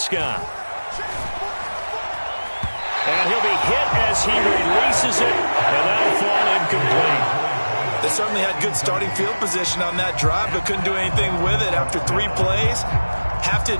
And he'll be hit as he releases it, and that'll fall incomplete. They certainly had good starting field position on that drive, but couldn't do anything with it after 3 plays. Have to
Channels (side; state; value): both; inverted; correlation -1.00